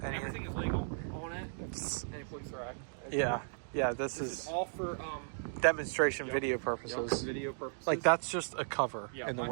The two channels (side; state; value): left; silent; digital silence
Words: everything is legal on it. Any police are at. Yeah. This This is is all for demonstration Yep. video Yep, purposes. video purposes. Like that's just a cover Yeah, in the I